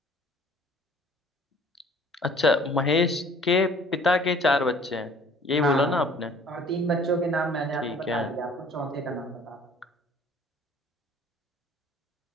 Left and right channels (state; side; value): normal; both; correlation 0.53